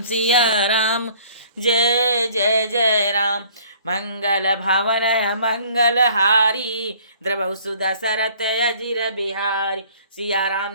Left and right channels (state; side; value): inverted; both; correlation -0.55